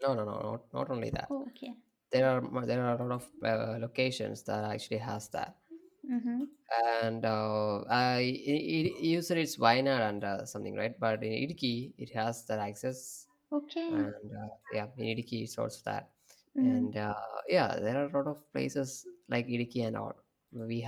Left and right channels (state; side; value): identical; both; correlation 1.00